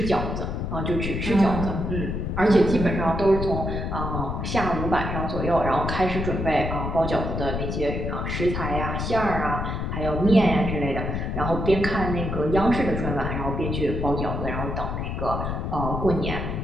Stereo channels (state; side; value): noise; left; rumble, 3 dB below the sound